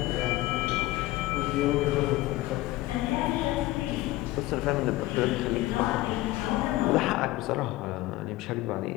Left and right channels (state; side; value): quieter; right; 17.9 dB